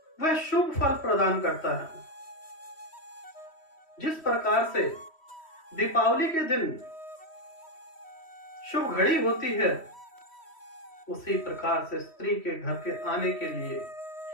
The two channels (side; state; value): right; late; 3.1 ms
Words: वह शुभ फल प्रदान करता है। जिस प्रकार से दीपावली के दिन शुभ घड़ी होती है, उसी प्रकार से स्त्री के घर के आने के लिए